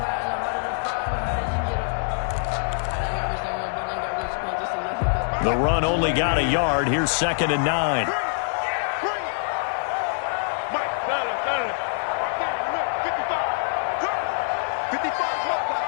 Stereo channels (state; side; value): silent; right; digital silence